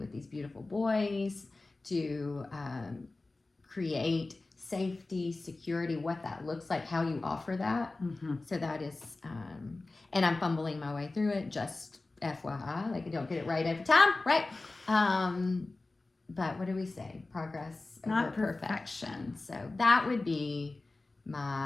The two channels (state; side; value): quieter; right; 3.2 dB